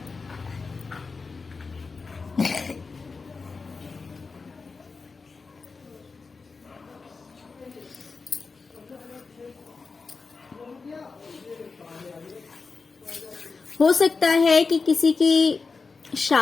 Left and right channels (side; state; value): right; quieter; 4.5 dB